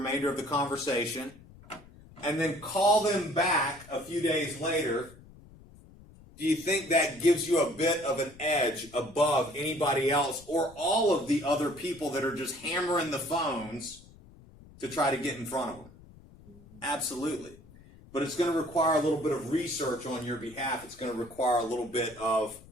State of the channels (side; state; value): left; noise; rumble, 22 dB below the sound